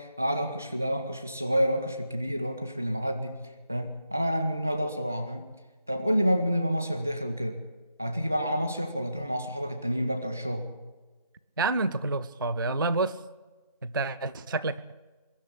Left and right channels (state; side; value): inverted; both; correlation -0.78